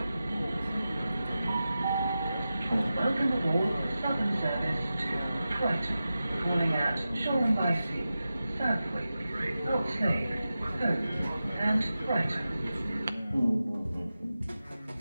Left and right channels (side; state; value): both; inverted; correlation -0.93